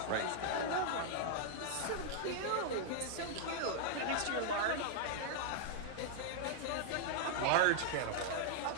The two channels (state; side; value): different; both; correlation -0.01